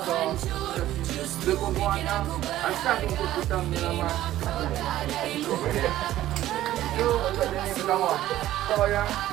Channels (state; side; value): quieter; left; 13.9 dB